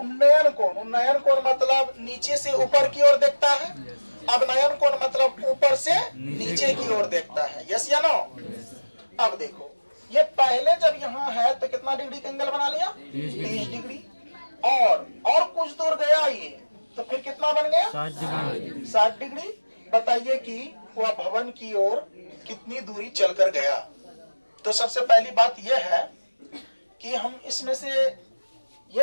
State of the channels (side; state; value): both; inverted; correlation -1.00